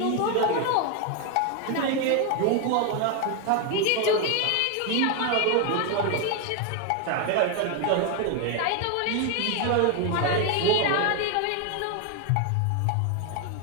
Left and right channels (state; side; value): different; both; correlation 0.01